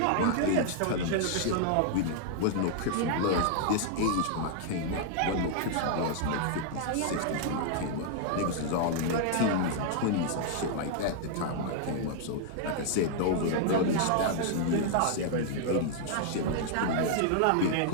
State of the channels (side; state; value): both; different; correlation -0.01